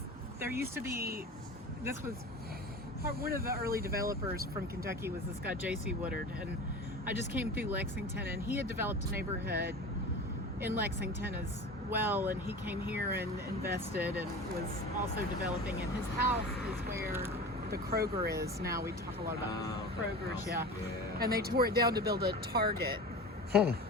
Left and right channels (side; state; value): both; normal; correlation 0.33